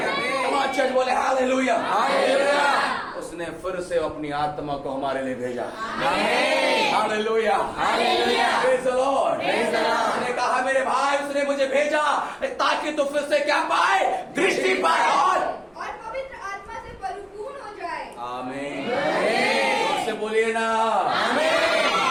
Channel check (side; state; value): both; identical; correlation 1.00